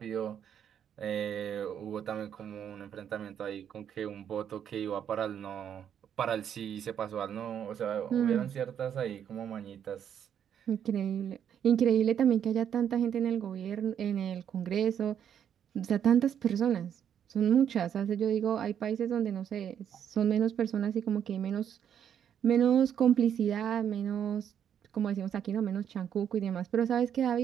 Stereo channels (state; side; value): quieter; left; 8.9 dB